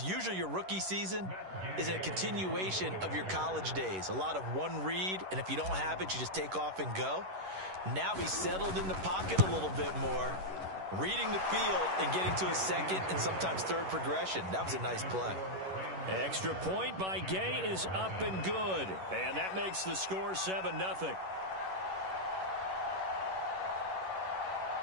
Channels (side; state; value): left; late; 11 ms